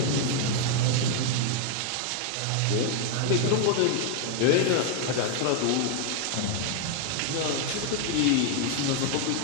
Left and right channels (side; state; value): both; different; correlation 0.00